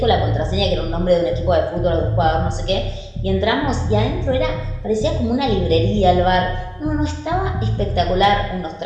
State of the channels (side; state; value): both; identical; correlation 1.00